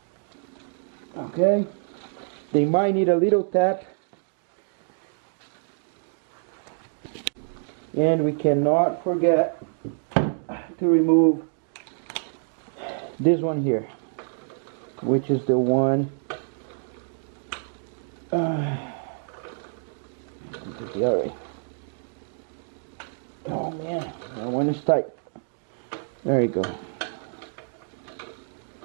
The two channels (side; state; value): left; silent; digital silence